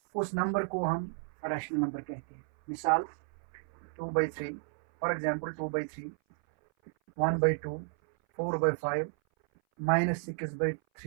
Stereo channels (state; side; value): silent; left; 56 dB below the other